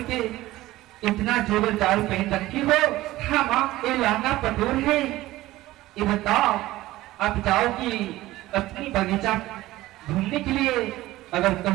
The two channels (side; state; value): left; quieter; 16.8 dB